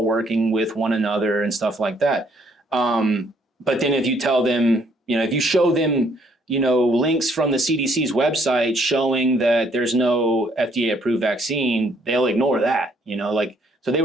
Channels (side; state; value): both; normal; correlation 0.66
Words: working with one another and stuff like that. But then if you tell them, if you show them, links from the CDC's website showing that there's no FDA approved vaccine, they'll ignore that, so they